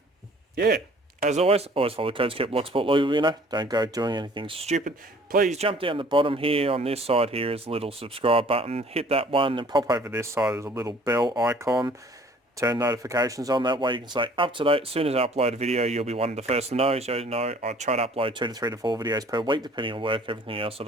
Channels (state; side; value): normal; both; correlation 0.54